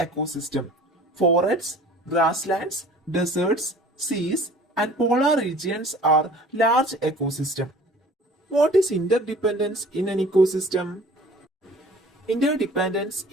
Forests, grasslands, deserts, seas, and polar regions are large ecosystems. What is interdependence in an ecosystem? Interdependence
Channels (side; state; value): both; normal; correlation 0.48